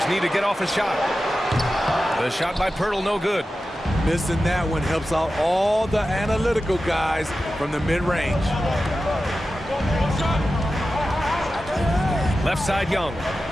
need to get off a shot. The shot by Pirtle, no good. Missing that one helps out all the analytical guys from the mid-range. Left side Young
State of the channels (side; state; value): both; normal; correlation 0.93